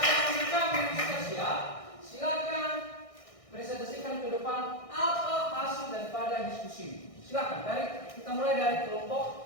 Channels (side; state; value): right; late; 1.6 ms